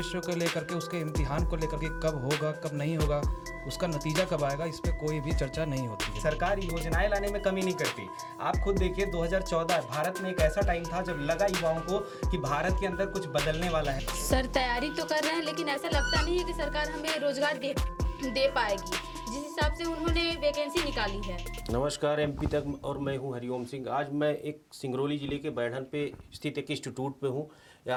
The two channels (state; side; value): identical; both; correlation 1.00